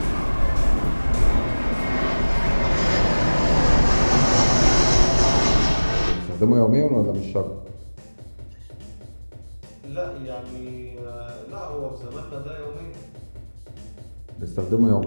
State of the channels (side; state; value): both; inverted; correlation -1.00